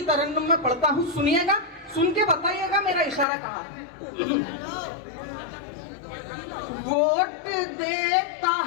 तरन्नुम में पढ़ता हूँ, सुनिएगा, सुन के बताइएगा मेरा इशारा कहाँ है। वोट देता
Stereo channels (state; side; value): drops out; right; at 3.2 s